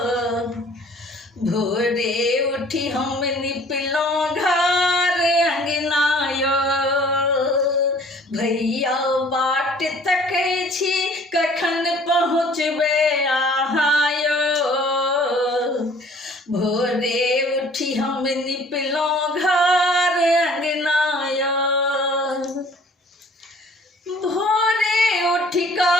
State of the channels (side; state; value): both; normal; correlation 0.53